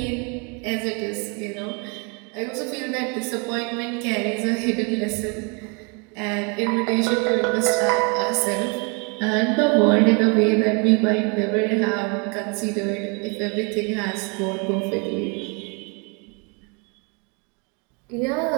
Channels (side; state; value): left; quieter; 33.5 dB